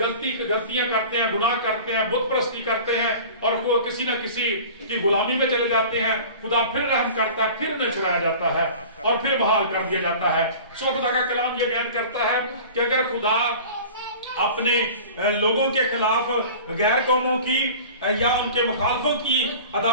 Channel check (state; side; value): inverted; both; correlation -0.40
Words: کرتے ہیں, گناہ کرتے ہیں, بت پرستی کرتے ہیں, اور وہ کسی نہ کسی کی غلامی میں چلے جاتے ہیں. خدا پھر رحم کرتا ہے, پھر انہیں چھڑایا جاتا ہے, اور پھر بحال کر دیا جاتا ہے. سو خدا کا کلام یہ بیان کرتا ہے کہ اگر خدا اپنے لوگوں کے خلاف غیر قوموں کی یا ان کے مخالفوں کی